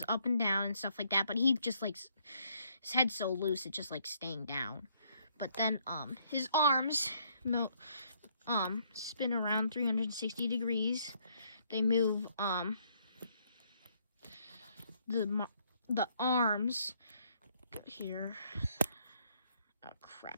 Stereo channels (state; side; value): inverted; both; correlation -0.69